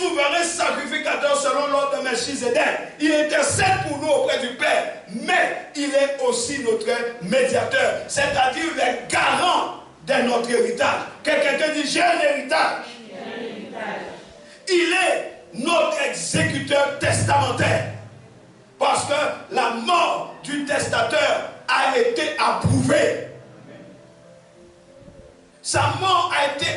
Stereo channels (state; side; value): identical; both; correlation 1.00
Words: sacrificateur selon l'ordre de Melchizedek. Il intercède pour nous auprès du Père. Mais il est aussi notre médiateur. C'est-à-dire le garant de notre héritage. Quelqu'un dit, j'ai un héritage. Il est notre exécuteur testamentaire. Parce que la mort du testateur a été approuvée. Sa mort a été